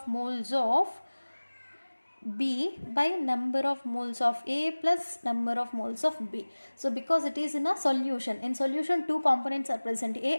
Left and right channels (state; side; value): inverted; both; correlation -1.00